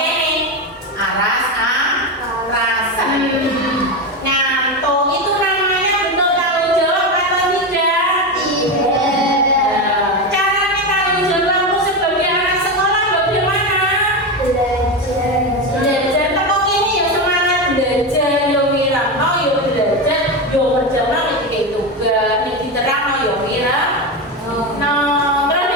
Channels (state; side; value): normal; both; correlation 0.16